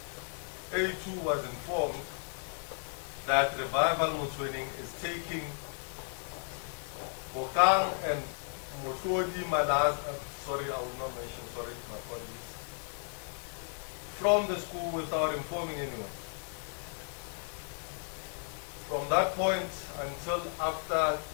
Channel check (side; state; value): right; silent; 55 dB below the other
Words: A2 was informed that Revival Motsoeneng is taking Bokang and Motlodi Malaz, sorry, I will not mention, sorry, my apologies, from the school without informing anyone. From that point until after